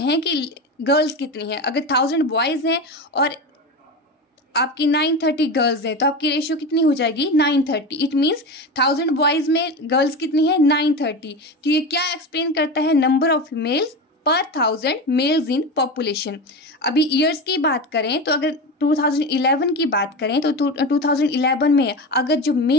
कि गर्ल्स कितनी हैं। अगर 1000 बॉयज हैं और आपकी 930 गर्ल्स हैं तो आपकी रेशियो कितनी हो जाएगी, 930। इट मीन्स 1000 बॉयज में गर्ल्स कितनी है, 930। तो ये क्या एक्सप्लेन करता है, नंबर ऑफ फीमेल्स पर 1000 मेल्स इन पॉपुलेशन। अभी ईयर्स की बात करें तो अगर 2011 की बात करें तो 2011 में अगर जो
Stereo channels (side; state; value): both; normal; correlation 0.23